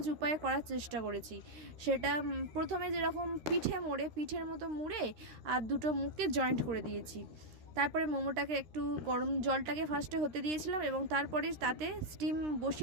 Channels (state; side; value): late; left; 13 ms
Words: উপায়ে করার চেষ্টা করেছি, সেটা প্রথমে যেরকম পিঠের মতো মুড়ে আর দুটো মুখকে জয়েন্ট করে দিয়েছি। তারপরে মোমোটাকে একটু গরম জলটাকে ফার্স্টে হতে দিয়েছিলাম এবং তারপরে তাতে স্টিম